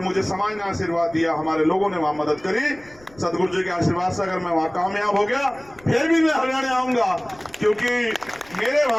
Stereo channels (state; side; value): noise; left; rumble, 26 dB below the sound